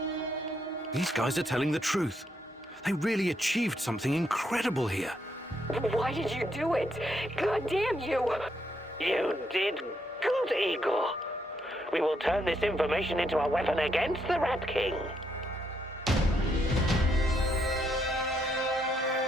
These guys are telling the truth. They really achieved something incredible here. Why did you do it? God damn you! You did good, Igor. We will turn this information into a weapon against the Rat King.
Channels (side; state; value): both; normal; correlation 0.76